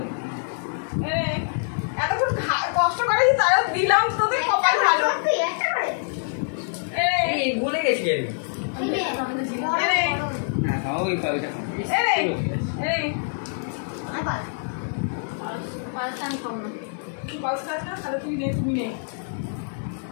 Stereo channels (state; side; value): silent; right; 62 dB below the other